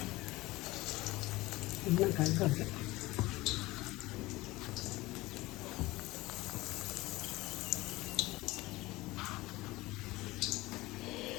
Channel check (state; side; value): quieter; right; 19.9 dB